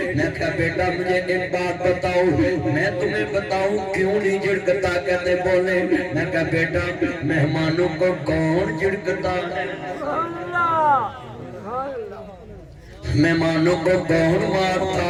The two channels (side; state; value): both; identical; correlation 1.00